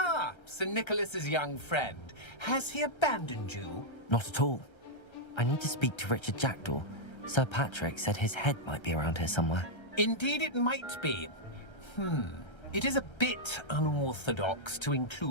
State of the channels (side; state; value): right; late; 1.3 ms